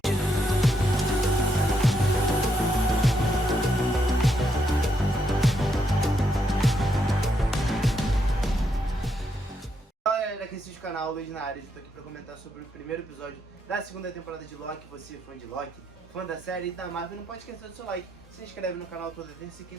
Fala galera, aqui é o canal Luiz na área. Eu tô aqui pra comentar sobre o primeiro episódio da segunda temporada de Loki. Você, fã de Loki, fã da série e da Marvel, não pode esquecer do seu like. Se inscreve no canal toda terça e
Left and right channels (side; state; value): both; normal; correlation 0.78